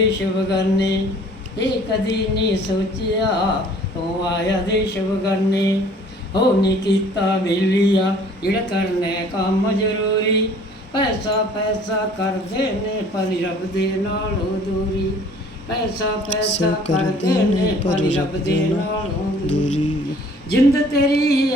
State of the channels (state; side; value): normal; both; correlation 0.53